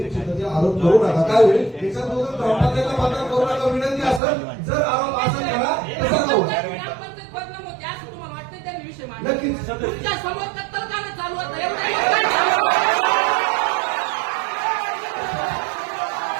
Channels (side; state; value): left; drops out; at 4.2 s